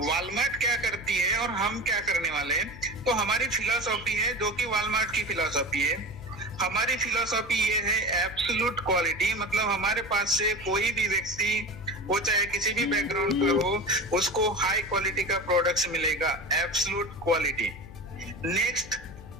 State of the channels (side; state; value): left; noise; hum, 16 dB below the sound